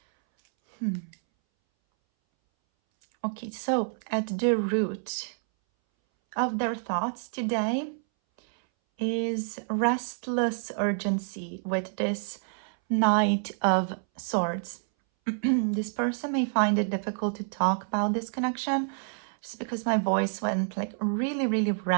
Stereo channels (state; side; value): silent; left; 59 dB below the other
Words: Okay, so at the root of their thoughts today is restless urgency with this Knight of Swords. This person may find it difficult to talk about this connection just because my voice went like really